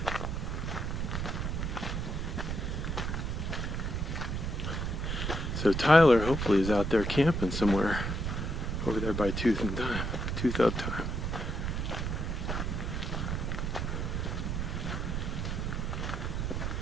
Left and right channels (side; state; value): right; noise; rumble, 1 dB below the sound